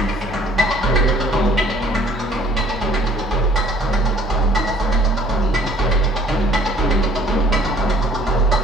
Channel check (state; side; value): normal; both; correlation 0.55